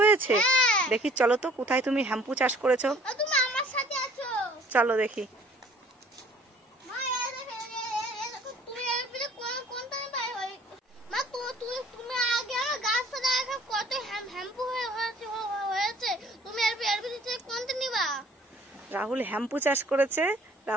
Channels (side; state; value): both; normal; correlation 0.54